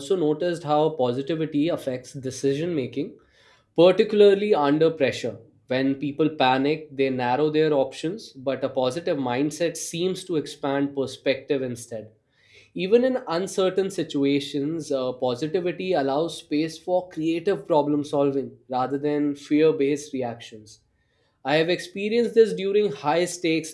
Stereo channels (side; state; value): both; identical; correlation 1.00